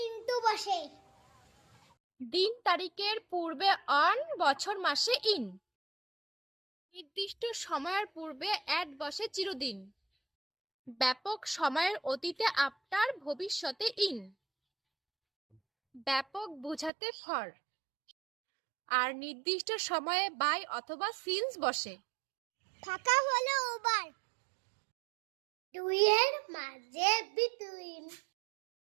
ইনটু বসে। দিন তারিখের পূর্বে অন, বছর মাসে ইন। নির্দিষ্ট সময়ের পূর্বে অ্যাট বসে চিরদিন। ব্যাপক সময়ের অতীতে আফটার, ভবিষ্যতে ইন। ব্যাপক বোঝাতে ফর, আর নির্দিষ্ট সময়ে বাই অথবা সিন্স বসে। ফাঁকা হলো ওভার, দুইয়ের মাঝে বিটুইন।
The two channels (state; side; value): drops out; left; at 16.9 s